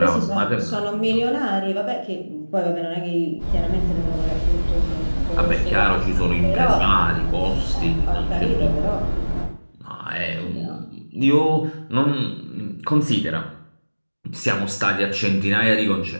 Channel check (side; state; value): both; inverted; correlation -1.00